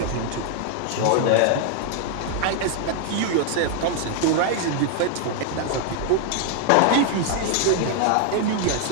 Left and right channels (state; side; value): different; both; correlation 0.00